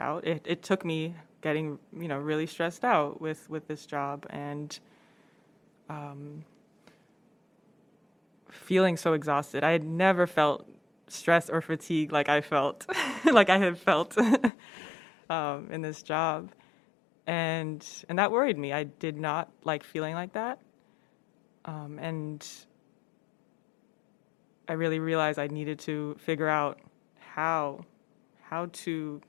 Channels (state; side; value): drops out; right; at 14.5 s